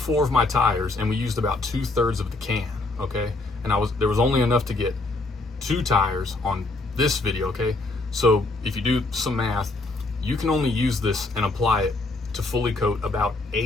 of my tires and we used about 2/3 of the can, okay? And there was only enough to get 2 tires on this video, okay? So if you do some math, you can only use this and apply it to fully coat about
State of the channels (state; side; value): quieter; right; 3.1 dB